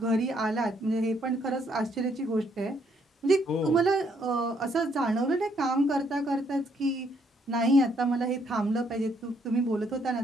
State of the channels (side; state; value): both; normal; correlation 0.70